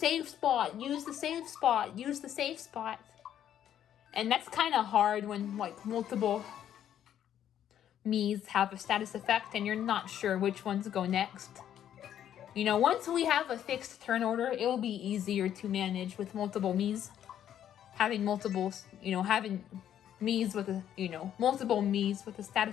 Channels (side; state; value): right; quieter; 10.4 dB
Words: spot, use the safe spot, use the safe spot. And that's kind of hard when multiple Miis have a status effect and you're not sure which ones go next. Once we have a fixed turn order, it will be easier to manage with multiple Miis. Having having Miis with multiple Miis with a